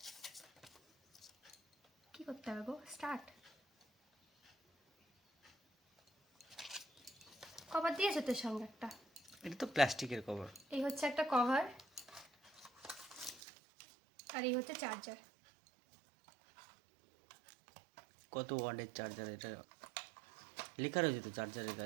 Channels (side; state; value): left; drops out; at 13.4 s